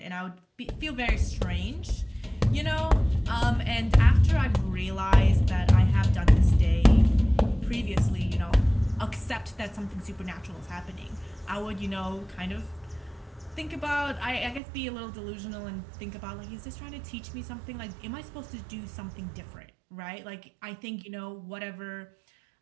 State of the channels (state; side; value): drops out; left; at 14.6 s